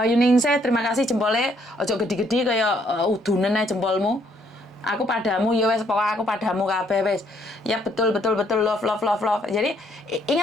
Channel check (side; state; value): both; normal; correlation 0.68